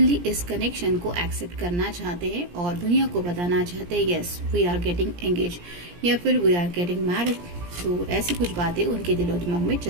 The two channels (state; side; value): late; left; 17 ms